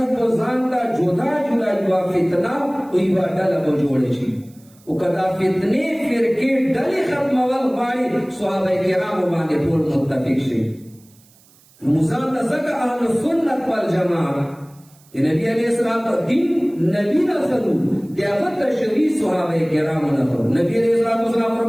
بزانتا جدا جدا جوا فتنہ اویوا ڈالا بجوڑے چی او کدا فتنے فرقے ڈلی ختم والغائی صحابہ کرام بانے پول متفق شے مزانتا زکا اہل سنت والجماعت نبی علیہ السلام دین نبی نفرو دیاغت تشریح صحابہ کرام نفرو نبی علیہ السلام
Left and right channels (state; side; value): noise; right; hiss, 29 dB below the sound